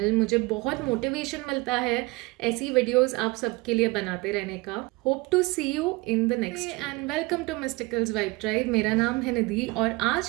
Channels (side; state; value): left; quieter; 24.3 dB